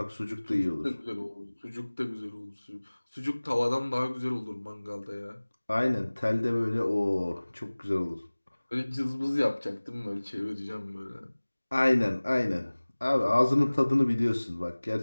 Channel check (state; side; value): inverted; both; correlation -1.00